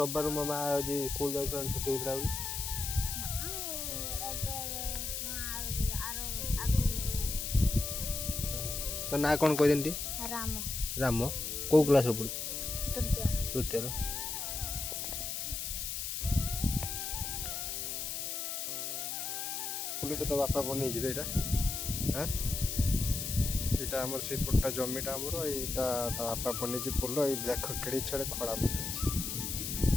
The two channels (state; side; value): noise; left; hiss, 3 dB below the sound